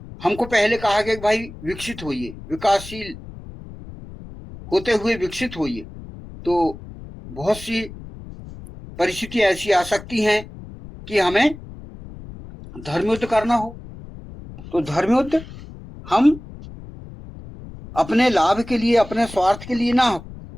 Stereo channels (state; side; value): noise; left; rumble, 15 dB below the sound